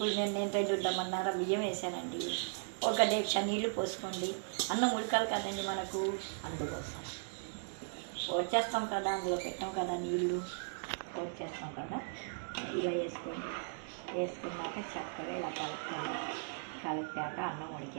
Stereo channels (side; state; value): left; silent; digital silence